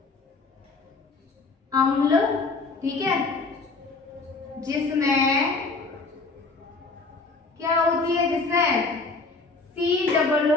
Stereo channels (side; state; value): right; quieter; 3.9 dB